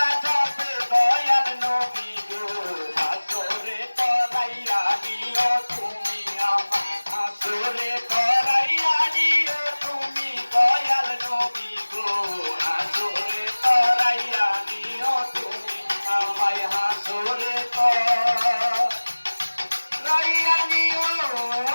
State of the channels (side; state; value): both; inverted; correlation -1.00